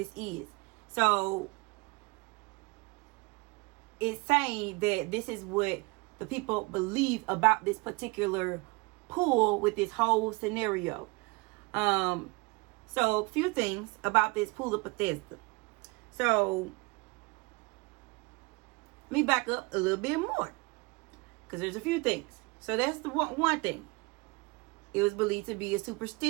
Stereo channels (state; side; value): quieter; left; 26.9 dB